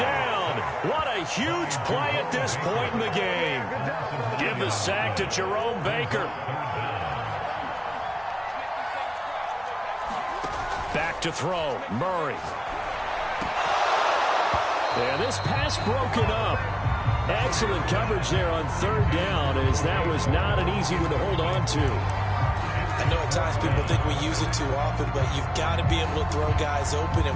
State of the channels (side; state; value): both; identical; correlation 1.00